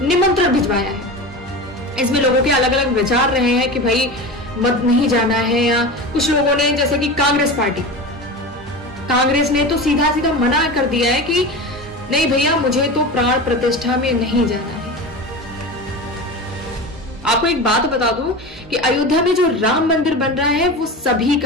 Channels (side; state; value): both; normal; correlation 0.28